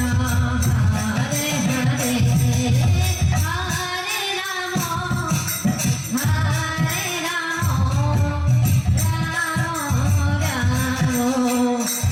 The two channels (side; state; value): both; identical; correlation 1.00